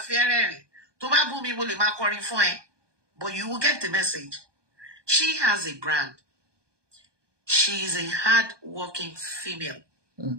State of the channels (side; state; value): left; late; 1.2 ms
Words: rẹ́rìn. Tó bá bú mi mo lè máa kọrin fún ẹ. But you will get the message. She has a brand. She is a hard-working female.